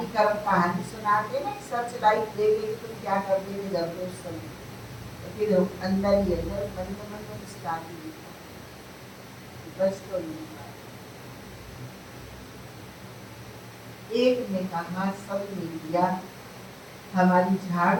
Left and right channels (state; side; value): identical; both; correlation 1.00